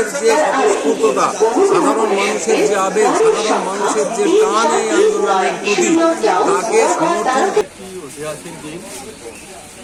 যে স্বতঃস্ফূর্ততা, সাধারণ মানুষের যে আবেগ, সাধারণ মানুষের যে টান এই আন্দোলনের প্রতি, তাকে সমর্থন। ঐতিহাসিক দিন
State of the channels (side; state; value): both; identical; correlation 1.00